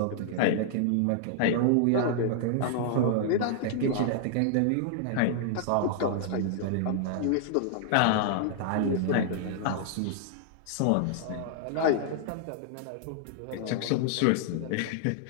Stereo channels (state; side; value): different; both; correlation -0.01